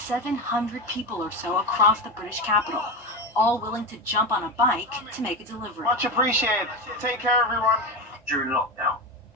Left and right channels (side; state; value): both; normal; correlation 0.19